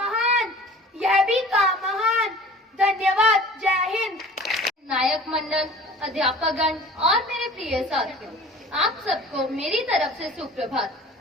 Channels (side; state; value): both; normal; correlation 0.44